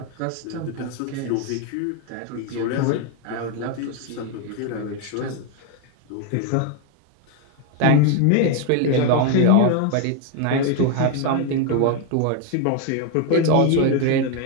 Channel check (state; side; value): different; both; correlation 0.01